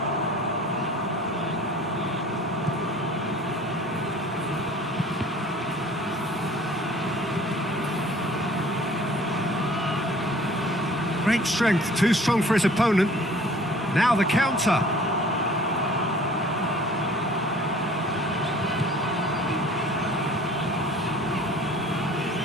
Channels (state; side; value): normal; both; correlation 0.50